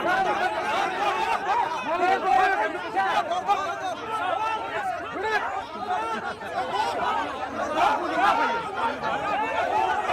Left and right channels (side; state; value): both; identical; correlation 1.00